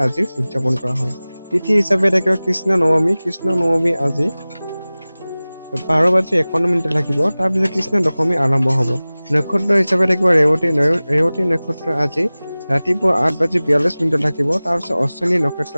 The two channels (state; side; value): inverted; both; correlation -0.98